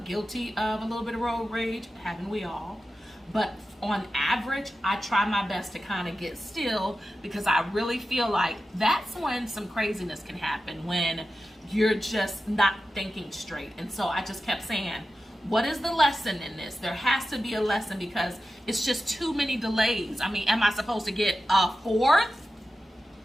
guilty of a little bit of road rage? Haven't we all? But on average, I try my best to kind of get still, because I really feel like that's when some craziness can happen, when you're just not thinking straight. And so I just kept saying, what is the lesson in this? There has to be a lesson, because it's just too many delays. I mean, am I supposed to get a fourth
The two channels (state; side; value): normal; both; correlation 0.93